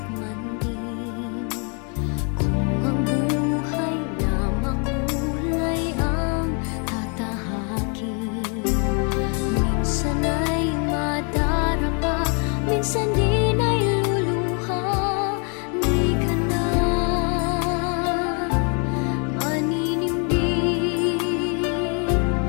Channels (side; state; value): right; quieter; 37.3 dB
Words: man din. Kung ang buhay na makulay ang tatahakin. Minsan ay madarapa, minsan din ay luluha. Di ka na